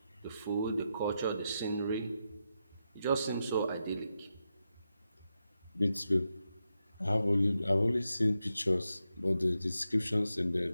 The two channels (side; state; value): both; inverted; correlation -0.87